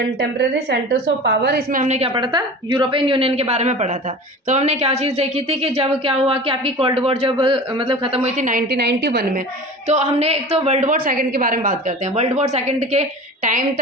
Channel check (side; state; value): both; normal; correlation 0.36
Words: सेंटर्स ऑफ पावर। इसमें हमने क्या पढ़ा था, यूरोपियन यूनियन के बारे में पढ़ा था। तो हमने क्या चीज़ देखी थी कि जब क्या हुआ कि आपकी कोल्ड वॉर जब मतलब खत्म हुई थी 1991 में, तो हमने एक तो वर्ल्ड वॉर सेकंड के बारे में बात करते हैं। वर्ल्ड वॉर सेकंड के टाइम